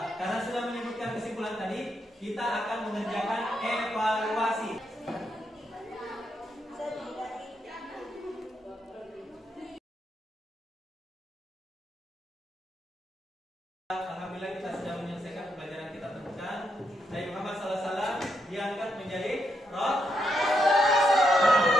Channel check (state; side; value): normal; both; correlation 0.80